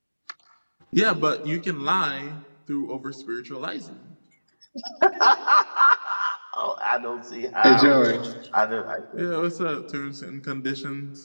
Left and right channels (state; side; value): inverted; both; correlation -1.00